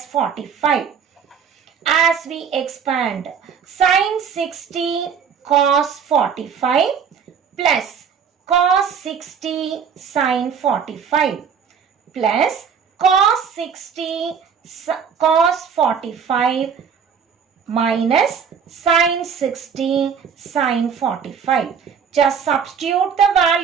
45. As we expand, sine 60 cos 45 plus cos 60 sine 45 plus cos 60 cos 45 minus sine 60 sine 45. Just substitute the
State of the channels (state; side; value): quieter; left; 6.9 dB